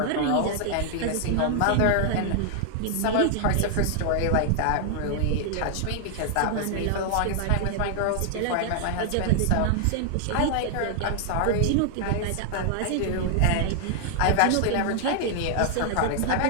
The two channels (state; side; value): different; both; correlation -0.01